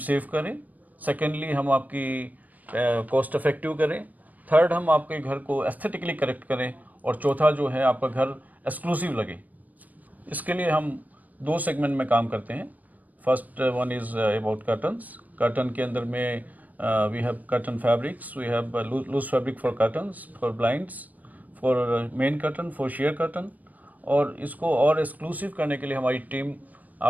save करें, secondly हम आपकी cost effective करें, third हम आपके घर को एस्थेटिकली करेक्ट करें और चौथा जो है आपका घर एक्सक्लूसिव लगे। इसके लिए हम दो सेगमेंट में काम करते हैं। First one is about curtains. Curtain के अंदर में we have curtain fabrics, we have loose fabric for curtains, for blinds, for main curtain, for sheer curtain. और इसको और एक्सक्लूसिव करने के लिए हमारी टीम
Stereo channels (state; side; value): late; left; 0.078 ms